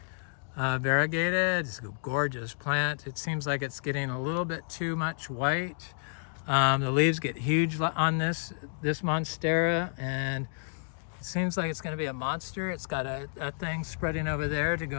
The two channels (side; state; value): right; silent; digital silence